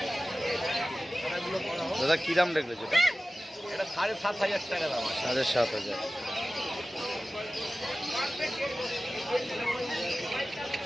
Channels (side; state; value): both; normal; correlation 0.96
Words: দাদা কি দাম রেখেছো এটা? এটা 7,500 টাকা দাম আছে। 7,500।